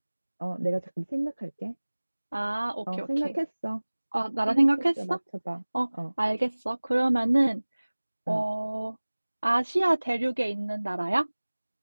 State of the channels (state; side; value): inverted; both; correlation -1.00